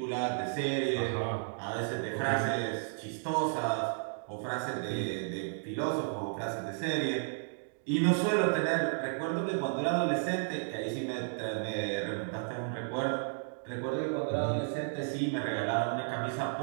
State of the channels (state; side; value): silent; left; digital silence